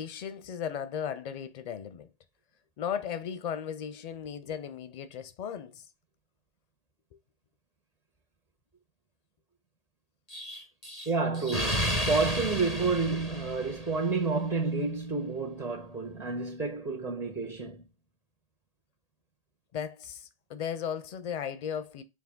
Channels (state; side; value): late; right; 1.8 ms